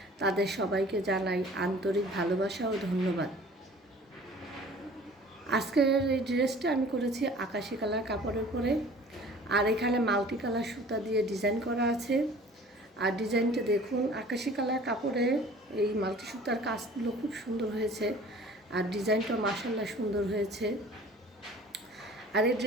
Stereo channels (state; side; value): normal; both; correlation 0.47